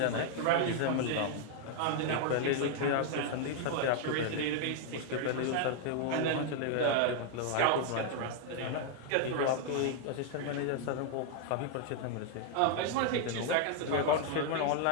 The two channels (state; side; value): different; both; correlation 0.00